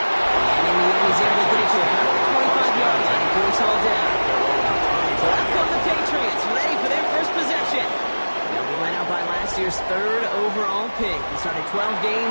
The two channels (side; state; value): both; inverted; correlation -1.00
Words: in the end, he's able to get it to about the 25-yard line before it's all down. So out come the Patriots, ready for their first possession. They'll be led out by last year's third overall pick. He started 12